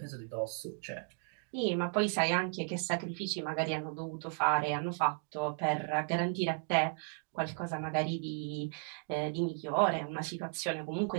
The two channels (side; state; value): left; silent; 55 dB below the other